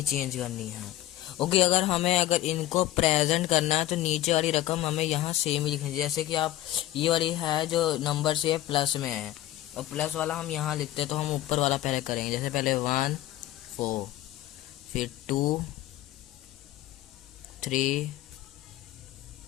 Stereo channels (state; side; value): quieter; right; 14.2 dB